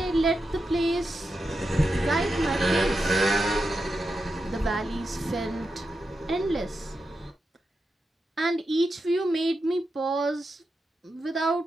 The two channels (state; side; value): normal; both; correlation 0.88